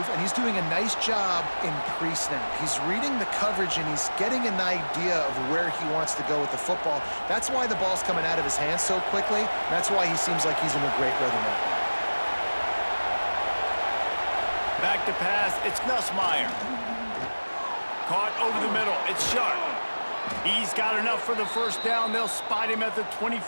and he's doing a nice job in pre-snap. He's reading the coverage, and he's getting an idea of where he wants to go with the football. That's why the ball's coming out of his hands so quickly. That's why he seems like he's in a great rhythm right now. Back to pass, it's Nussmeier. Caught over the middle, it's Sharp. He's got enough for the first down. They'll spot him at the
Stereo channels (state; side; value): inverted; both; correlation -1.00